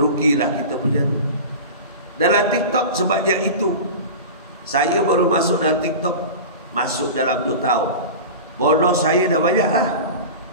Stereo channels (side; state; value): both; inverted; correlation -0.31